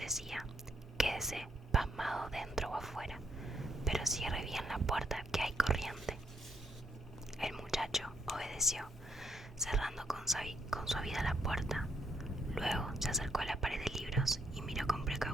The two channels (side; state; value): both; normal; correlation 0.75